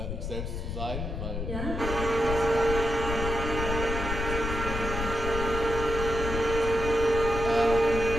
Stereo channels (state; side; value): noise; left; rumble, 4 dB below the sound